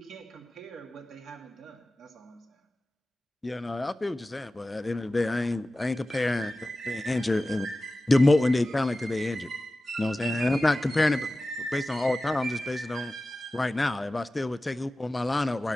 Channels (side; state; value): both; normal; correlation 0.96